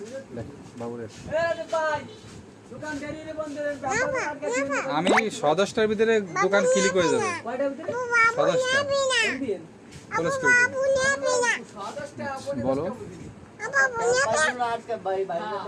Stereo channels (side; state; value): both; identical; correlation 1.00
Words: দেখ বাবু দেখ। ভাই দোকান দেরি বন্ধ করেন, ব্যাপার আর কাছে আমি 10:10টার ভিতরে দোকান ক্লিক হয়ে যাবে। কয়টার ভিতরে 10:10টা দিন ক্লোজ করে দেব। সদস্যটা আপনি বলো ভাই ভাই